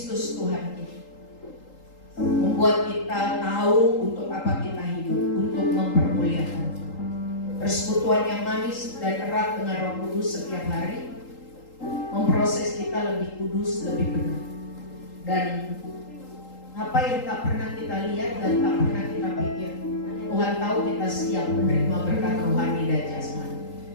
Tuhan kita, membuat kita tahu untuk apa kita hidup, untuk mempermuliakan persekutuan yang manis dan erat dengan Roh Kudus setiap hari, memproses kita lebih kudus, lebih benar. Dan apa yang tak pernah kita lihat dan tak pernah kita pikir, Tuhan tahu kita siap menerima berkat rohani dan jasmani.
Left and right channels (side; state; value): right; late; 3.8 ms